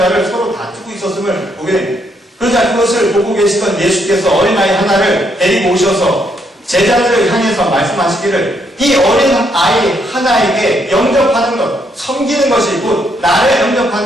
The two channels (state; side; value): normal; both; correlation 0.74